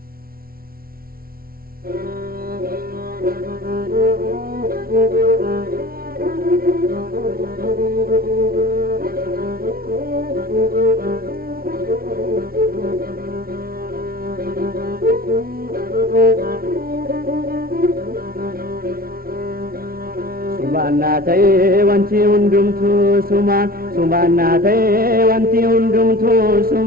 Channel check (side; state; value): left; late; 0.43 ms